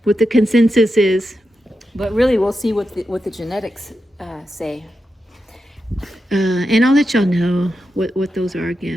what the consensus is, but really we'll see what the genetics say. And I'll let y'all know what those are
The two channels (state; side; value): normal; both; correlation 0.88